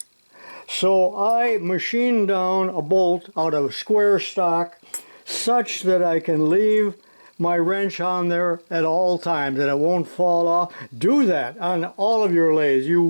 So I machined down a bolt out of square stock such that I can leave my wrench on there at all times and it won't fall off. Do that on all of your lathes. You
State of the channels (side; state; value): both; inverted; correlation -1.00